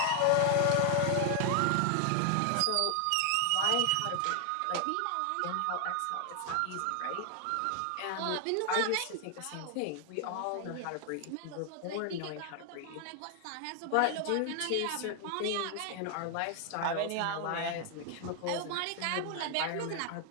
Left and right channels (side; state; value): both; different; correlation 0.00